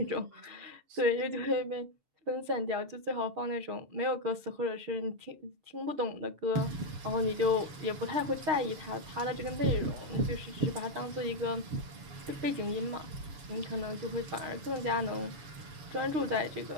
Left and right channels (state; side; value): late; left; 7.1 ms